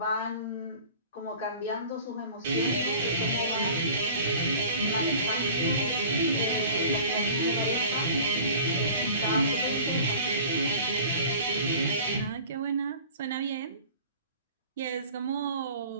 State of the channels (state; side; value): inverted; both; correlation -0.43